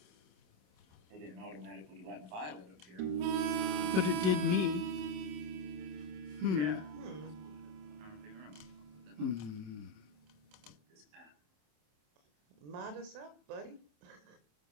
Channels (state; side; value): late; left; 27 ms